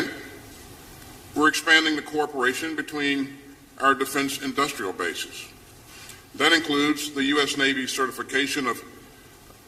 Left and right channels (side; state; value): both; identical; correlation 1.00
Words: we're expanding the cooperation between our defense industrial bases. That includes the U.S. Navy certification of